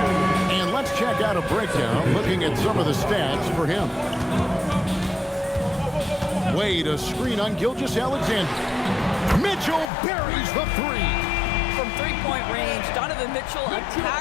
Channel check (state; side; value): drops out; right; at 9.9 s